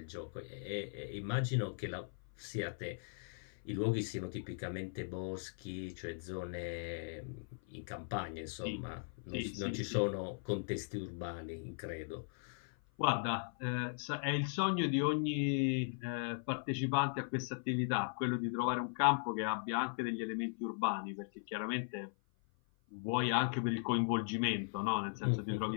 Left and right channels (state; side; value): silent; right; 52 dB below the other